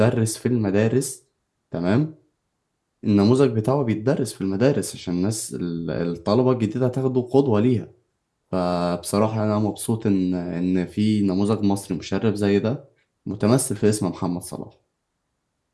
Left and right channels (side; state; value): both; identical; correlation 1.00